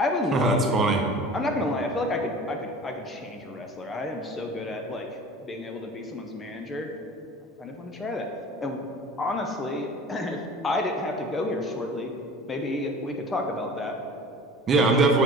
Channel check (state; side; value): normal; both; correlation 0.41